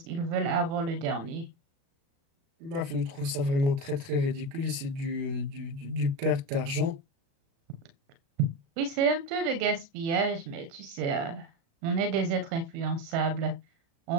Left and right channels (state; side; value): late; left; 36 ms